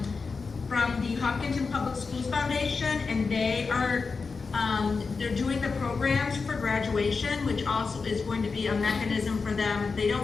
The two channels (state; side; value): quieter; right; 4.7 dB